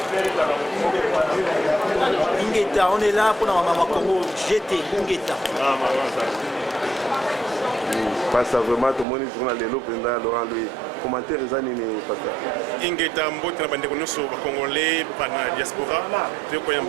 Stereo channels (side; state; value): left; drops out; at 9.1 s